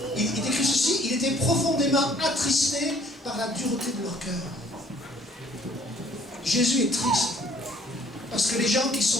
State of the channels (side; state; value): both; normal; correlation 0.58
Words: il décrit ceci, il était profondément attristé par la dureté de leur cœur. Jésus est triste, parce que les gens qui